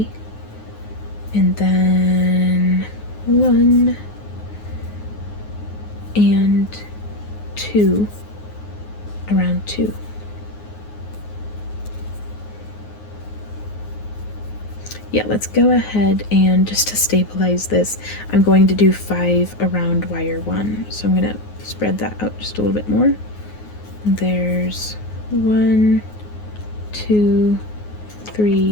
and then 1 and 2 around 2. Yeah, let's go ahead and just to stabilize this, I'm going to do 5 around wire 1. So I'm going to spread that out just a little bit more. There's 1, 2,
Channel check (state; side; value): late; right; 9.5 ms